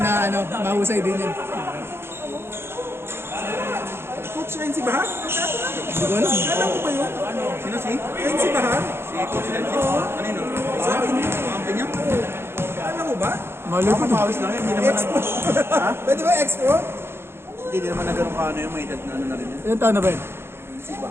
mahusay din yun. Coach Renzi Bahar? Hindi ko alam. Alam ko ba yun? Sino si? Renzi Bahar? Si Coach Lenzi? Ano yun? Sa akin. Kakampi niya? Alam mo ba? Malo ko. Pawis lang yun. Hindi naman Expo. Pwede ba Expo? Hindi naman na ganun ka yung may edad na na rin yan. Ilan taon na ba yun?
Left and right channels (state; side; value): late; left; 0.12 ms